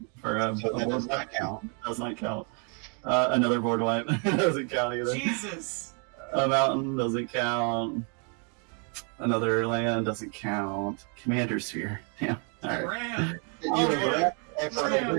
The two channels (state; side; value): quieter; left; 38.8 dB